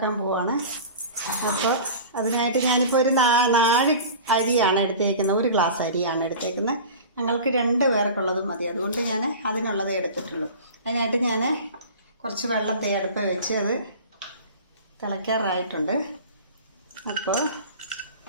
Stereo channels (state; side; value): inverted; both; correlation -0.37